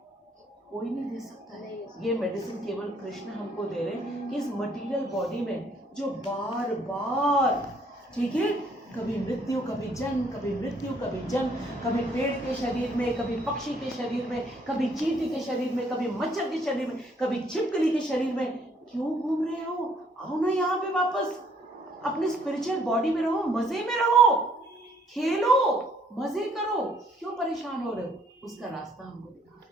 कोई नहीं दे सकता है। ये मेडिसिन केवल कृष्ण हमको दे रहे हैं कि इस मटेरियल बॉडी में जो बार बार, ठीक है, कभी मृत्यु कभी जन्म, कभी मृत्यु कभी जन्म, कभी पेड़ के शरीर में, कभी पक्षी के शरीर में, कभी चींटी के शरीर में, कभी मच्छर के शरीर में, कभी छिपकली के शरीर में, क्यों घूम रहे हो? आओ ना यहाँ पे वापस, अपने स्पिरिचुअल बॉडी में रहो, मजे में रहो, खेलो, मजे करो, क्यों परेशान हो रहे हो? उसका रास्ता हमको दिखा रहे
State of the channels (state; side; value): normal; both; correlation 0.65